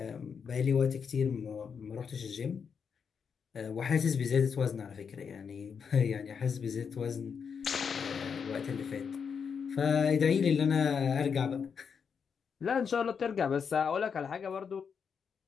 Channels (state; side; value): quieter; right; 6.5 dB